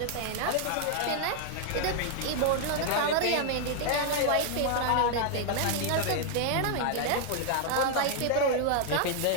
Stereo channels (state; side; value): different; both; correlation 0.00